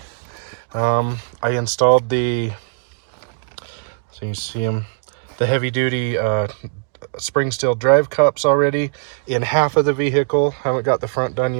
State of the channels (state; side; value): silent; left; digital silence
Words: I installed the, so you see them, the heavy duty spring steel drive cups already in half of the vehicle. Haven't got the front done